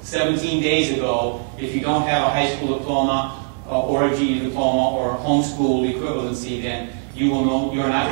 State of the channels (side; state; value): left; silent; 60 dB below the other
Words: 17 days ago, if you don't have a high school diploma or a GED diploma or homeschool equivalency, then you will know you're not